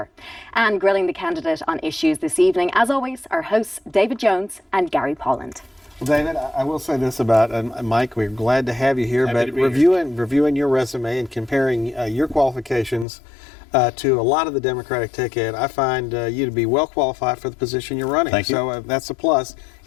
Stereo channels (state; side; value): drops out; right; at 13.1 s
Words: And grilling the candidate on issues this evening, as always, our hosts David Jones and Gary Polland. Well, David, I will say this about Mike. We're glad to have you here, but reviewing your resume and comparing your qualifications to a lot of the Democratic ticket, I find you to be well qualified for the position you're running. Thank you. So that's a plus.